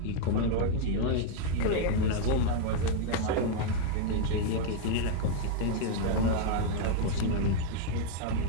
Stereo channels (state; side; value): different; both; correlation 0.00